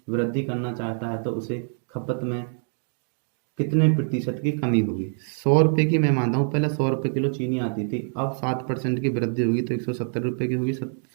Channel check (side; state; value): left; silent; 62 dB below the other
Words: वृद्धि करना चाहता है तो उसे खपत में कितने प्रतिशत की कमी होगी। 100 रुपये की मैं मानता हूँ पहले 100 रुपये किलो चीनी आती थी, अब 7% की वृद्धि होगी तो 170 रुपये की होगी,